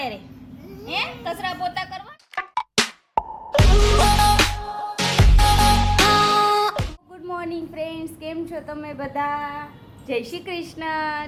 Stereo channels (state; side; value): identical; both; correlation 1.00